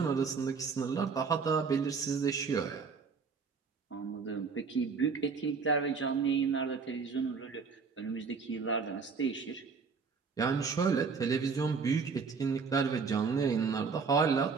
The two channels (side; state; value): left; quieter; 5.3 dB